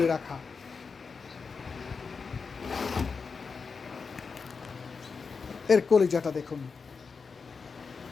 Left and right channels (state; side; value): quieter; right; 5.1 dB